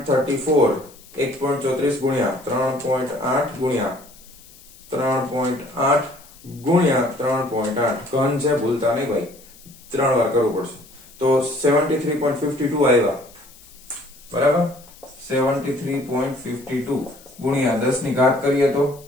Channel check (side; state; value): left; noise; hiss, 23 dB below the sound